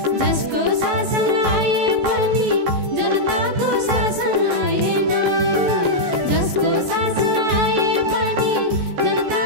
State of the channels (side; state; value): left; late; 14 ms